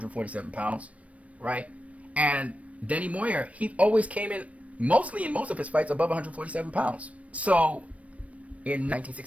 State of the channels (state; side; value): late; left; 0.065 ms